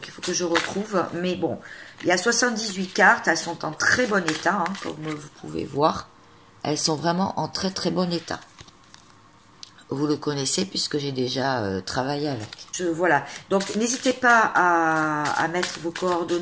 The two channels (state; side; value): identical; both; correlation 1.00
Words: il faut que je retrouve. Mais bon, il y a 78 cartes. Elles sont en très bon état, hein, comme vous pouvez voir. Elles sont vraiment en très très bon état. Vous le connaissez puisque j'ai déjà travaillé avec. Voilà. Donc, n'hésitez pas à mettre vos